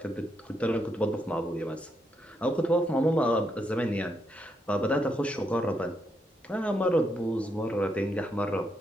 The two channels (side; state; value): both; normal; correlation 0.79